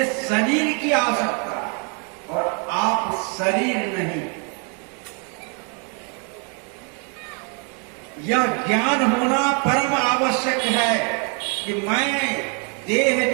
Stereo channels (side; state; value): left; quieter; 38.1 dB